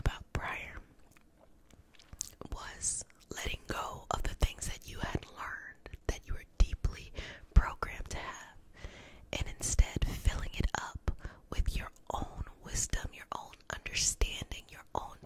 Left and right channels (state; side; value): identical; both; correlation 1.00